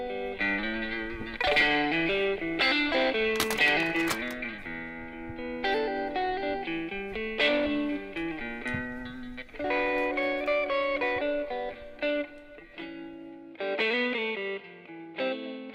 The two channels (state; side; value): identical; both; correlation 1.00